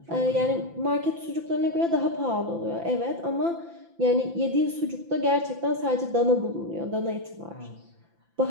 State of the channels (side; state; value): left; late; 5.9 ms